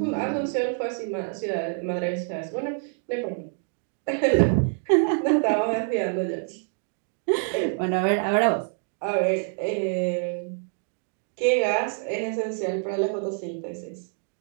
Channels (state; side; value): silent; left; 61 dB below the other